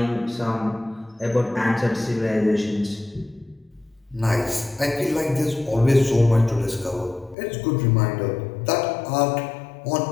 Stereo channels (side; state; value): right; drops out; at 7.4 s